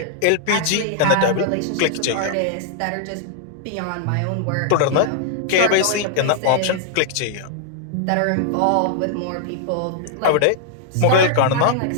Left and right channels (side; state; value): both; different; correlation -0.01